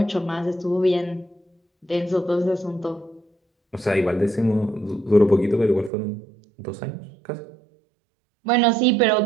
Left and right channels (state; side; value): drops out; left; at 5.9 s